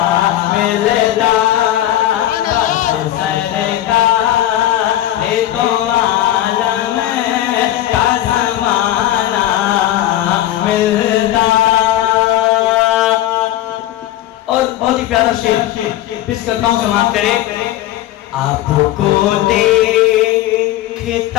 मिलता। काश सरकार दो आलम का ज़माना मिलता। और बहुत ही प्यारा शेर पेश करता हूँ, समाप्त करें। आपको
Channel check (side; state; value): right; quieter; 13.6 dB